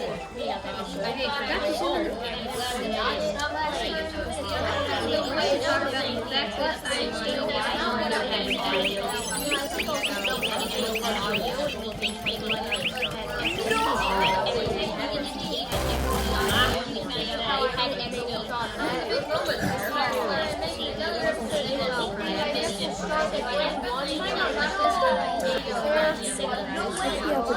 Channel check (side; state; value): both; identical; correlation 1.00